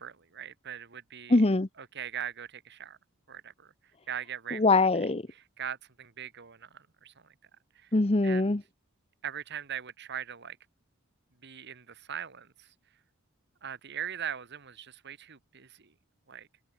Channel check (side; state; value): both; normal; correlation 0.46